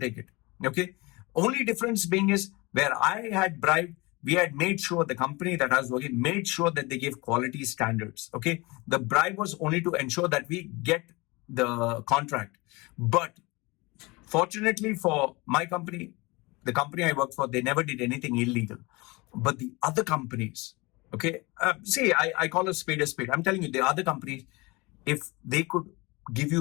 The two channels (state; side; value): quieter; right; 24.5 dB